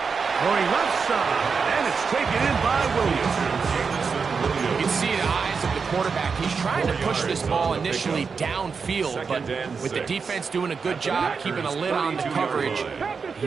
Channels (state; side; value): quieter; left; 5.4 dB